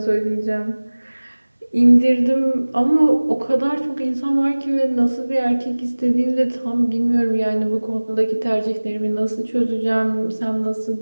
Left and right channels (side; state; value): both; inverted; correlation -1.00